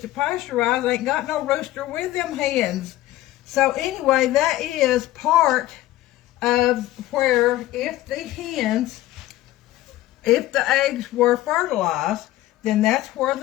pasteurized ain't got no rooster with them hens. So anyway, that is part of where if the eggs were fertilized, then that's where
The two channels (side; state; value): right; quieter; 15.6 dB